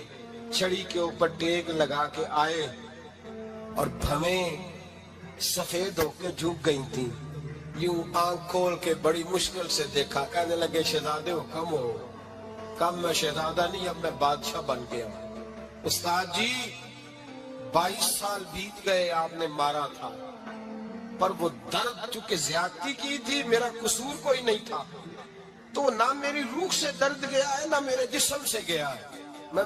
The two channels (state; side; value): identical; both; correlation 1.00